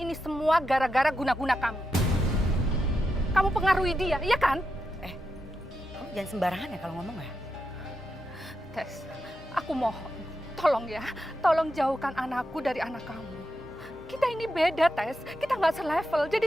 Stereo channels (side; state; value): both; normal; correlation 0.86